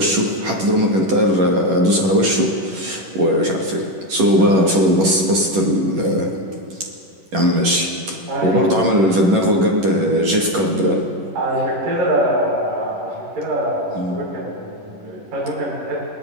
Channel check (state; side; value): late; left; 11 ms